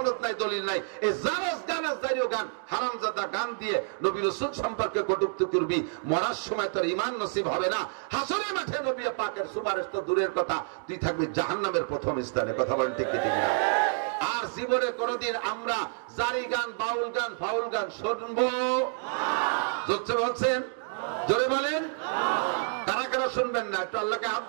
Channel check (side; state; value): left; silent; 59 dB below the other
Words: নাই, দলিল নাই, এই জারাস গান আর জারিও গান, হারামজাদা গান দিয়ে নবী রাসূল সম্পর্কে কটূক্তি করবি, মরার সময় তোর ঈমান নসিব হবে না। হাসরের মাঠে নবী পাকের সুপারিশ তো দূরের কথা, তুই থাকবি জাহান্নামের প্রথম স্থানে। কথা বলেন ঠিক ঠিক না? আর জীবনে কোনদিন আমরা জারি গান, বাউল গান, ফাউল গান শুনবো? জোরে বলছেন, জোরে বলেন। কারা কারা শুনবেন না একটু আল্লাহকে হাত